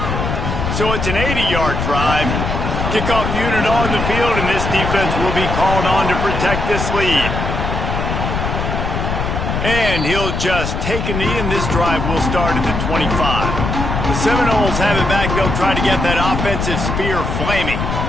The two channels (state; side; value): noise; left; rumble, 2 dB below the sound